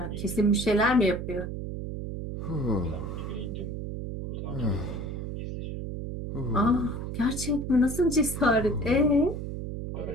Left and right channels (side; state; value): right; noise; hum, 6 dB below the sound